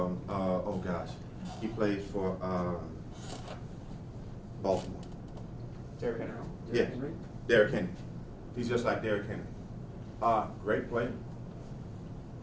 He plays for Baltimore. Derrick Henry. Yeah. Derrick Henry. He's just like Derrick Henry. Great player.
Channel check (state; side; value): identical; both; correlation 1.00